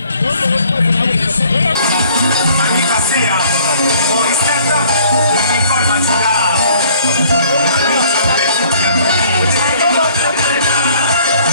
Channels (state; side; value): inverted; both; correlation -0.57